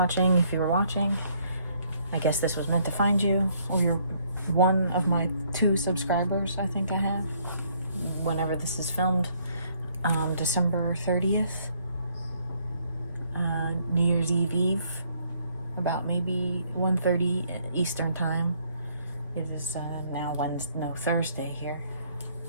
If you were watching, I guess this was meant to find you, or you're one of my 2 subscribers I think I have. Whenever this is filmed, December 30th, New Year's Eve, about maybe 1:30 Eastern Time. It is now Thursday here.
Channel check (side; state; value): both; inverted; correlation -0.67